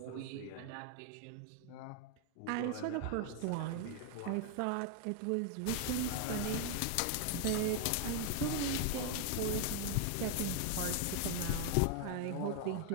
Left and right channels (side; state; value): both; different; correlation 0.00